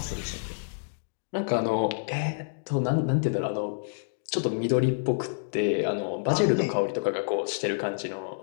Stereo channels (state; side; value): silent; right; digital silence